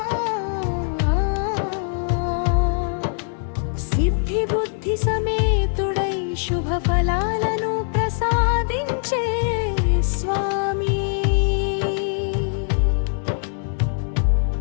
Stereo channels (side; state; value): right; silent; digital silence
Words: సిద్ధి బుద్ధి సమేతుడై శుభ ఫలాలను ప్రసాదించే స్వామి,